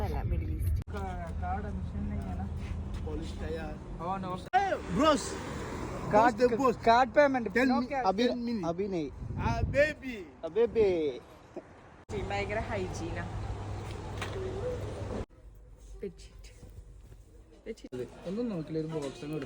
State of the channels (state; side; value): identical; both; correlation 1.00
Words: അല്ല, middle east. Bros, card payment अभी नहीं बेबी ഭയങ്കര ഹൈജീനാ. ഒന്നും നോക്കില്ല, ഒരു ബോക്സ്